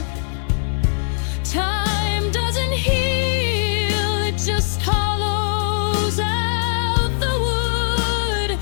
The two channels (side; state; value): right; silent; digital silence